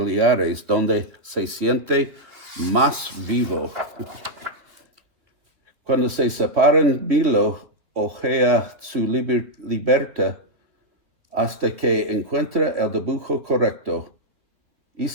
donde se siente más vivo. Cuando se separan, Milo ojea su libreta hasta que encuentra el dibujo correcto.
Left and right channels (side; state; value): left; late; 3.1 ms